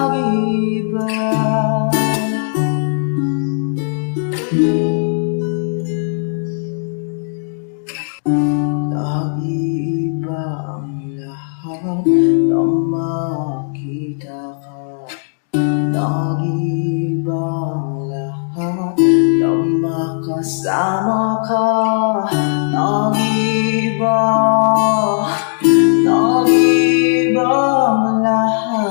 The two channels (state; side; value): silent; right; digital silence